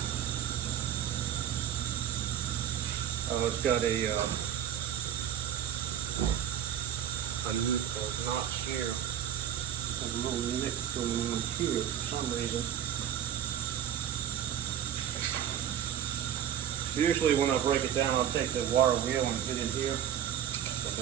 It's got a notch here. There's a little nick going on here for some reason. Usually when I break it down, I'll take the wire wheel and get in here. But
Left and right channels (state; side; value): quieter; left; 10.0 dB